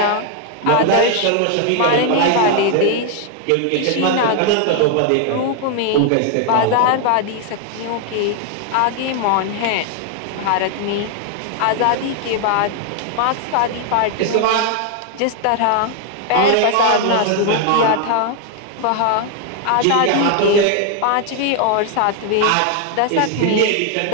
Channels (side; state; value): both; different; correlation 0.00